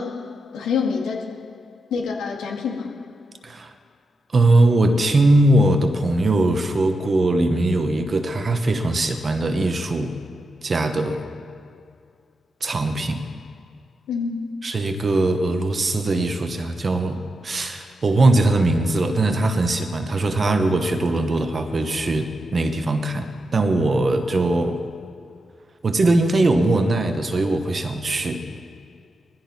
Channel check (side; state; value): both; normal; correlation 0.87